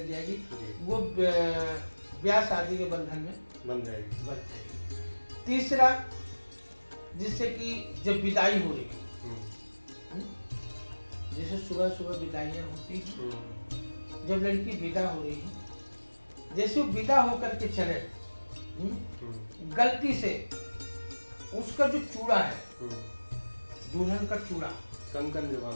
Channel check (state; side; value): inverted; both; correlation -1.00